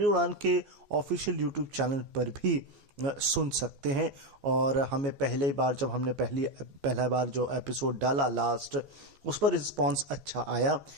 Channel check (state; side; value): late; left; 14 ms